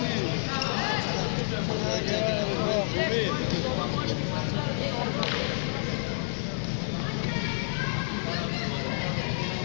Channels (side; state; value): right; silent; digital silence